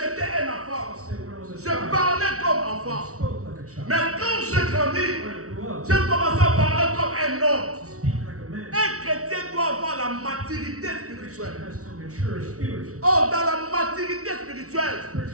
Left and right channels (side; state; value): left; late; 0.64 ms